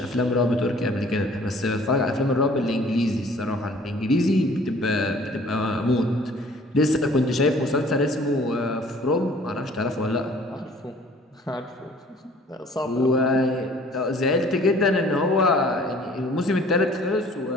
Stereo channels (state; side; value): normal; both; correlation 0.53